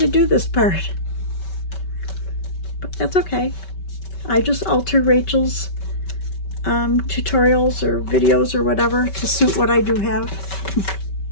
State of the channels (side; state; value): right; late; 5.2 ms